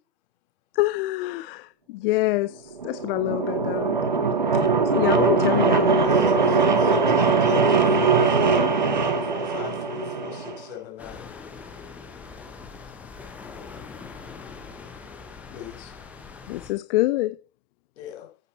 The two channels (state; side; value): normal; both; correlation 0.06